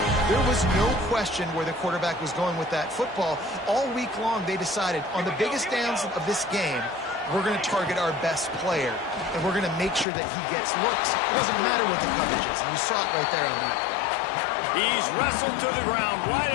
There was no question where the quarterback was going with that football. All week long, they decided on the biggest downs of this game, we're going to target our best player, and we're going to make sure that he gets looks. It doesn't matter what the coverage is, and you saw it right there on that play. He's wrestled to the ground right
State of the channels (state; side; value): drops out; right; at 10.1 s